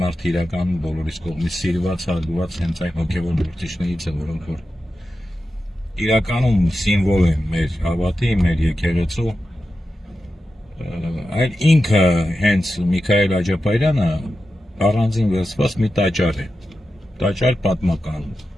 մարդը իրական բոլորիս կողմից սիրված, հարգված հենց այն հոգևոր գործիչներից է, որոնք որ իրականում սիմվոլ են մեր հավատի, մեր եկեղեցու, այլ ինքը հենց Միքայել Աջապարյանը առանձին վերցված մի տաճար է, տաճար պատմական,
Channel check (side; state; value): both; normal; correlation 0.91